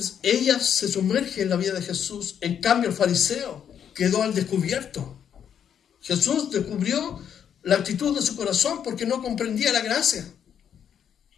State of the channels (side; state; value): right; quieter; 8.6 dB